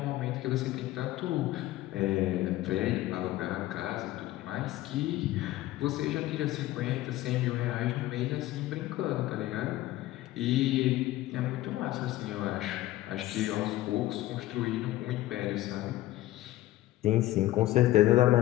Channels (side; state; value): right; quieter; 16.0 dB